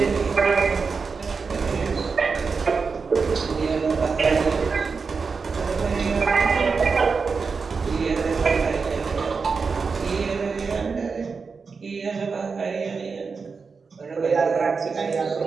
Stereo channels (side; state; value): left; quieter; 5.0 dB